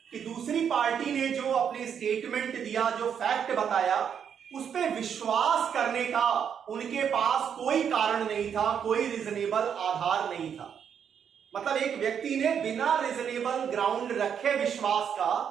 कि दूसरी पार्टी ने जो अपनी स्टेटमेंट दिया, जो फैक्ट बताया, उस पर विश्वास करने का उनके पास कोई कारण नहीं था, कोई रीजनेबल आधार नहीं था। मतलब एक व्यक्ति ने बिना रीजनेबल ग्राउंड रखे विश्वास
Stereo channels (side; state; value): left; quieter; 7.9 dB